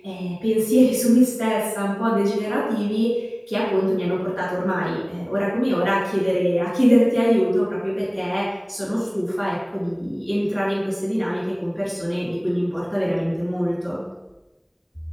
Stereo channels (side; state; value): both; identical; correlation 1.00